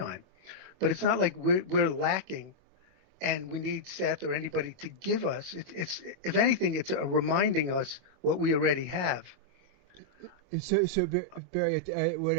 But it's not like we're lacking and we need Seth or anybody to give us. It's if anything, it's a reminding us what we already have. So Barrie,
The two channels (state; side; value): normal; both; correlation -0.06